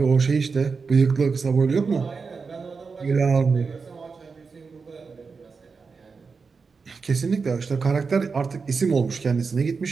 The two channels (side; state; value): left; quieter; 4.9 dB